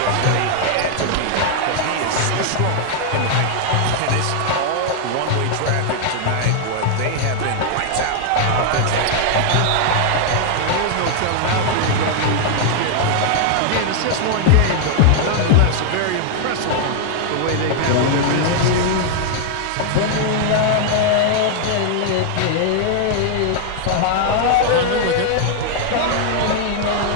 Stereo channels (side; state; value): both; different; correlation 0.00